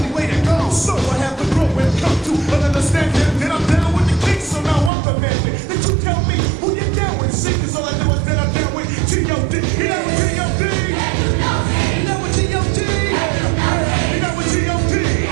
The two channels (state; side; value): drops out; left; at 4.9 s